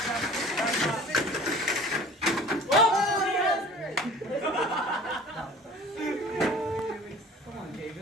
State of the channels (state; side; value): normal; both; correlation 0.45